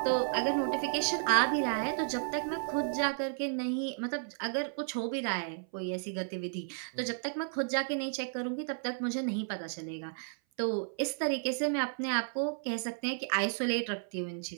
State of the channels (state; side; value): silent; left; 56 dB below the other